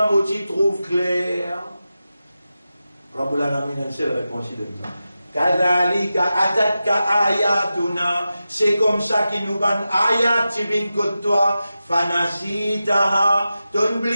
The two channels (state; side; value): inverted; both; correlation -0.92